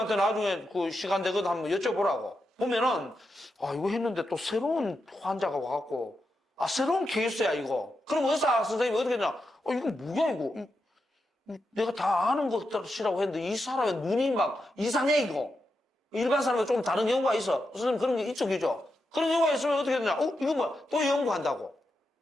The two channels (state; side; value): normal; both; correlation 0.87